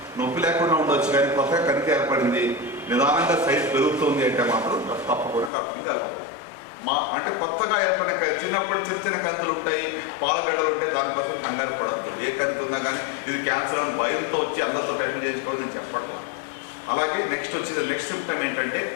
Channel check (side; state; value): right; drops out; at 5.5 s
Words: నొప్పి లేకుండా ఉండవచ్చు కానీ కొత్తగా కణితి ఏర్పడింది, నిదానంగా సైజ్ పెరుగుతుంది అంటే మాత్రం తప్పకుండా డాక్టర్ని కలవాలి. అంటే కొత్తగా ఏర్పడిన చిన్నప్పుడు చిన్న కంతులు ఉంటాయి, పాలగడ్డలు ఉంటాయి, దానికోసం కంగారు పడద్దు. ఏ కంతి ఉన్నా కానీ ఇది క్యాన్సర్ అని భయంతో వచ్చి అందరితో టెస్ట్ చేసుకోవడం నేను చెప్పట్లా. అలాగే నెక్స్ట్ సిమ్టమ్ ఏంటంటే